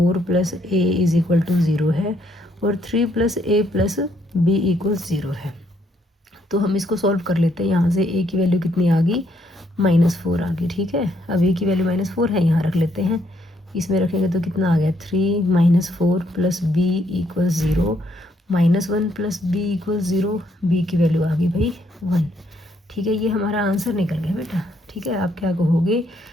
plus a is equal to 0 है, और 3 plus a plus b equals 0 है। तो हम इसको सॉल्व कर लेते हैं। यहाँ से a की वैल्यू कितनी आ गई -4 आ गई, ठीक है। अब a की वैल्यू -4 है, यहाँ रख लेते हैं, इसमें रखेंगे तो कितना आ गया 3 4 plus b equals 0, -1 plus b equals 0, b की वैल्यू आ गई भाई 1, ठीक है। ये हमारा आंसर निकल गया बेटा, ठीक है। आप क्या कहोगे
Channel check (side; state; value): both; normal; correlation 0.72